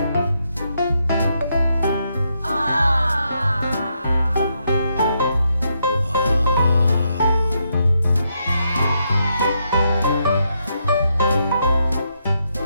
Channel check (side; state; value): both; inverted; correlation -0.80